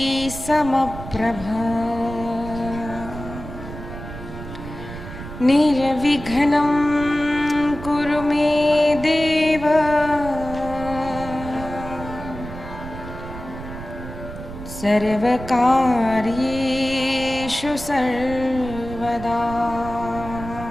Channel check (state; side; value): noise; right; rumble, 11 dB below the sound